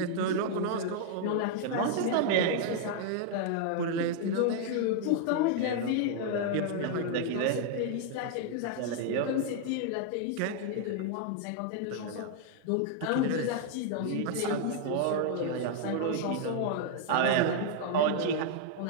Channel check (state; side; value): different; both; correlation 0.00